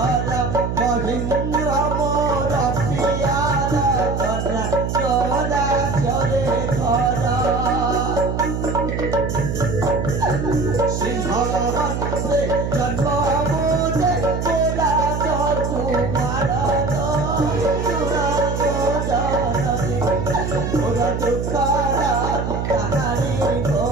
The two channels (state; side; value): noise; right; hum, 2 dB below the sound